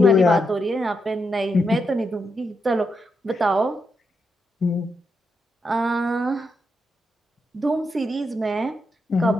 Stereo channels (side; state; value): both; normal; correlation 0.83